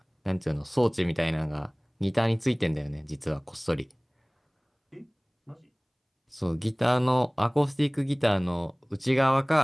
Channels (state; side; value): identical; both; correlation 1.00